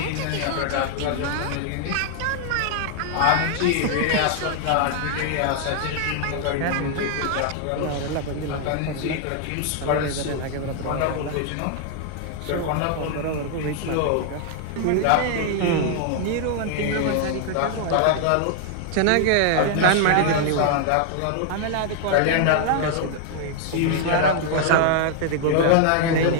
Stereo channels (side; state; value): both; different; correlation 0.00